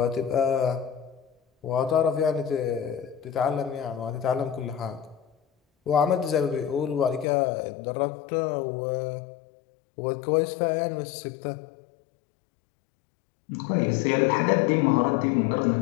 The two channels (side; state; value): right; drops out; at 7.2 s